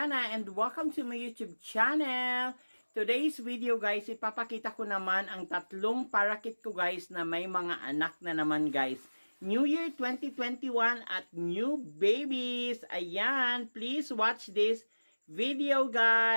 and welcome to my YouTube channel. Today's video guys, ipapakita ko naman ang tatlong parakeet ko guys na may mga anak na naman guys. New Year 2021 at new babies. Ayan, please watch this video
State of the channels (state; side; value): inverted; both; correlation -1.00